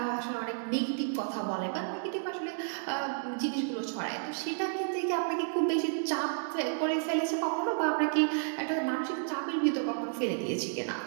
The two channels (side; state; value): left; silent; digital silence